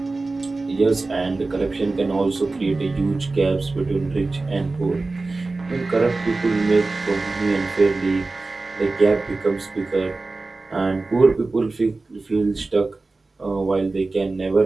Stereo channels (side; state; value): left; quieter; 3.5 dB